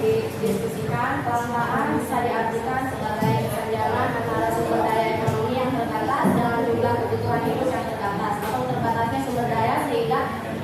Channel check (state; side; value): identical; both; correlation 1.00